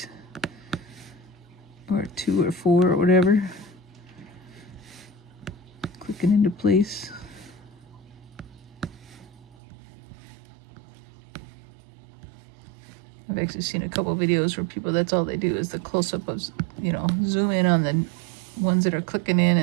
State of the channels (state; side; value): drops out; left; at 9.6 s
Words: Or 2 or 4 or whatever. Clicking into place. I've actually seen a couple videos where people, that's all they do is the close-up of, you know, zoom in on the ones that are clicking